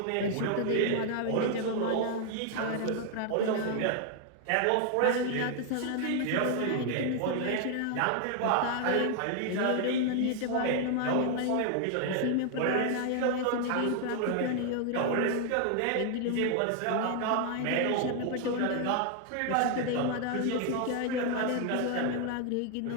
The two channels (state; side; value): different; both; correlation 0.00